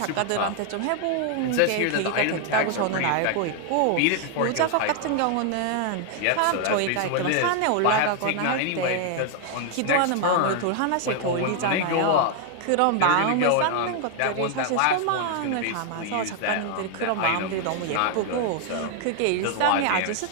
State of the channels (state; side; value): different; both; correlation 0.00